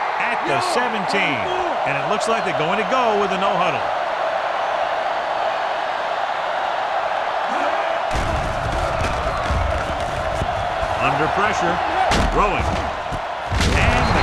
at the 17. And it looks like they're going to go with a no-huddle. Under pressure. Throwing. And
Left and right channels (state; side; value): identical; both; correlation 1.00